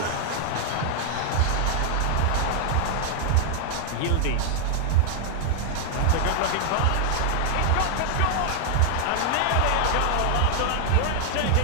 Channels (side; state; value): both; different; correlation -0.01